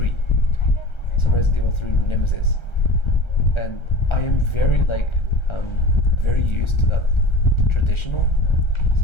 So Resident Evil 3 Nemesis, and I am very very used to that traditional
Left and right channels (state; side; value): late; right; 1.3 ms